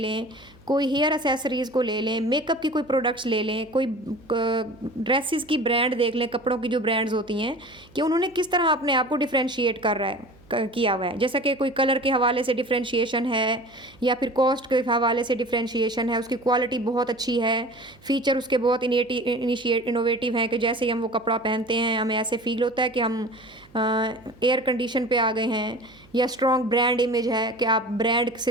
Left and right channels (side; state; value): right; noise; hum, 27 dB below the sound